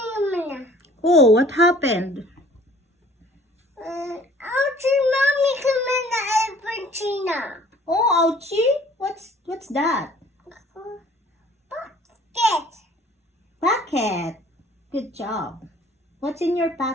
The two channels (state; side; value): normal; both; correlation 0.53